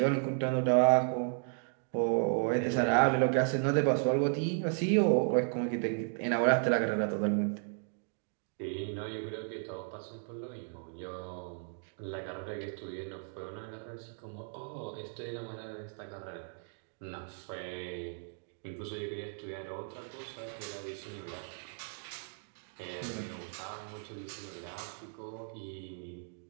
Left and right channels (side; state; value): left; silent; 55 dB below the other